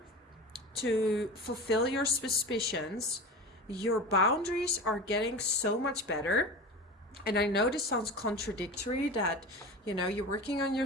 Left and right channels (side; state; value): both; normal; correlation 0.31